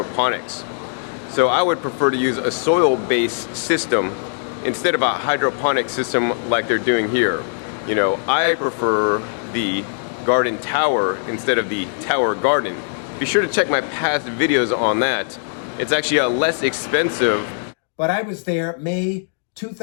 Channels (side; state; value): right; silent; digital silence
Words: So I would prefer to use a soil-based system instead of a hydroponic system like they're doing here. You know, I prefer the garden tower instead of the Tower Garden. Be sure to check my past videos on that. It's actually a less expensive. But I was there May